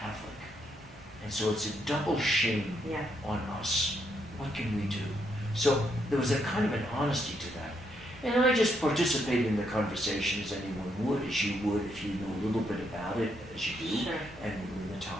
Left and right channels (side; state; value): both; normal; correlation 0.77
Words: And so it's a double shame on us. What can we do? So there was a kind of an honesty to that. And I just participated in the conversation as anyone would, as you would if you knew a little bit about it, as you do, and knew the